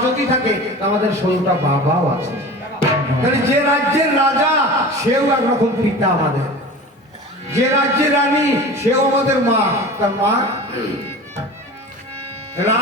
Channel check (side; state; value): both; normal; correlation 0.36